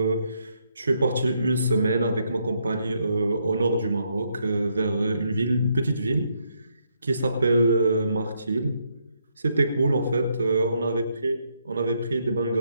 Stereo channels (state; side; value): inverted; both; correlation -0.76